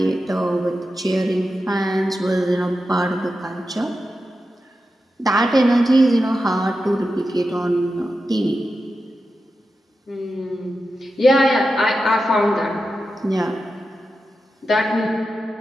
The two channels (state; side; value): normal; both; correlation 0.90